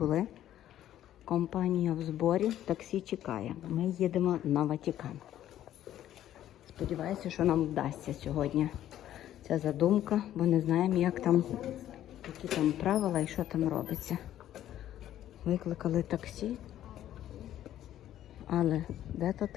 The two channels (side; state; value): right; quieter; 12.1 dB